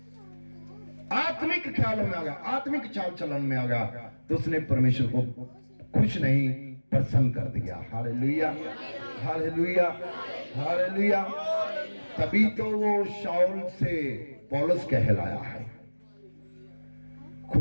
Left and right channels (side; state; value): both; inverted; correlation -1.00